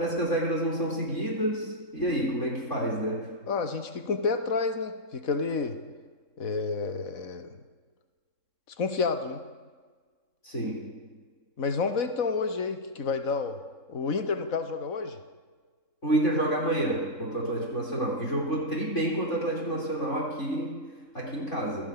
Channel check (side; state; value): right; late; 3.7 ms